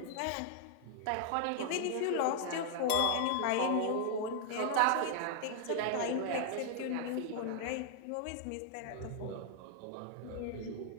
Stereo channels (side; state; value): both; different; correlation -0.01